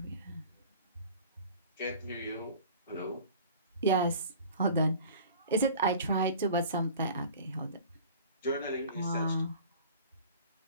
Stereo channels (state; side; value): inverted; both; correlation -0.44